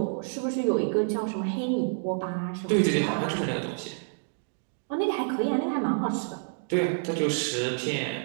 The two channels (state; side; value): silent; left; digital silence